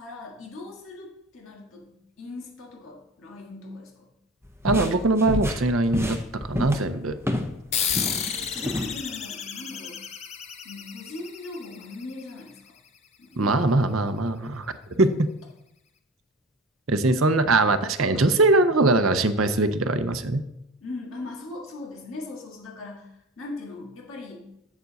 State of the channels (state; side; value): normal; both; correlation 0.36